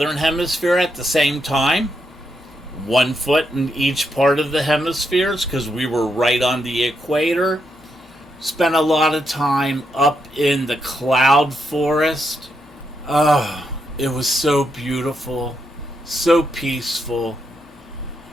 hemisphere at the same time. 1 foot in each part of the hemispheres because we were right on the equator. Spent a lot of time up in the cloud forest. Oh, it was so beautiful, so peaceful.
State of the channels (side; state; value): both; normal; correlation 0.81